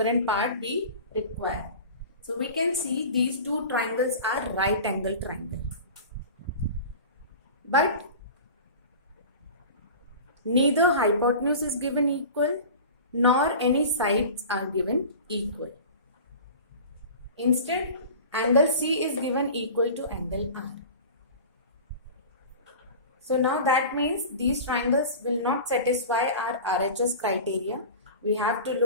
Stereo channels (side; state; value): both; inverted; correlation -0.36